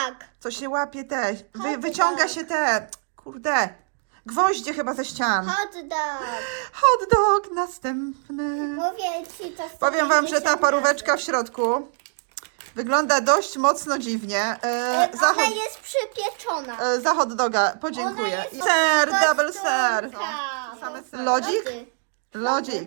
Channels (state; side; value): silent; left; 60 dB below the other